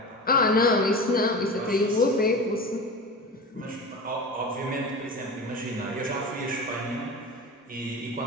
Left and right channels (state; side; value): normal; both; correlation 0.30